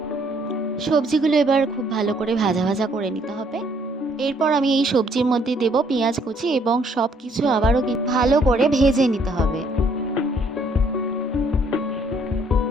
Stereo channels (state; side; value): normal; both; correlation 0.66